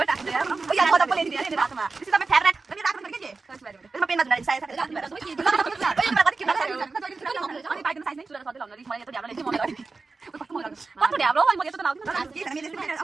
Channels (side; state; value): left; quieter; 4.1 dB